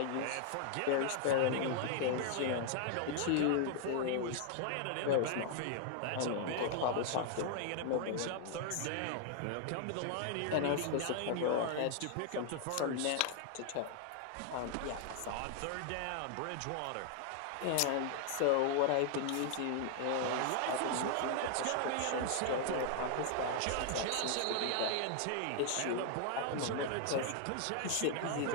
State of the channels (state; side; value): different; both; correlation 0.00